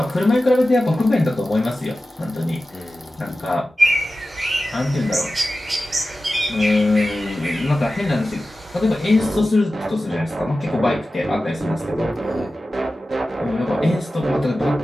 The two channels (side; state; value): both; normal; correlation 0.94